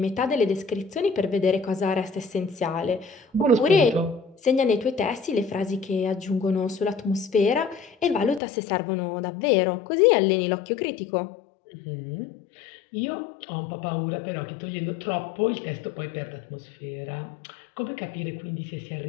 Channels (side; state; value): right; drops out; at 8.4 s